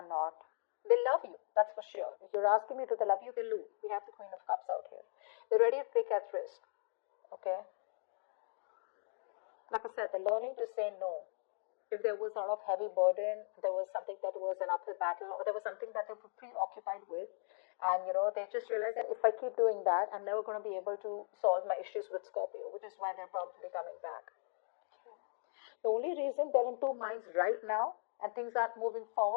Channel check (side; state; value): right; silent; digital silence